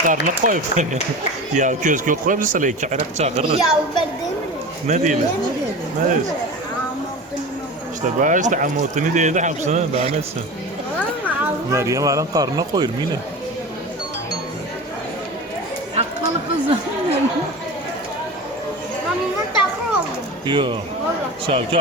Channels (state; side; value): normal; both; correlation 0.31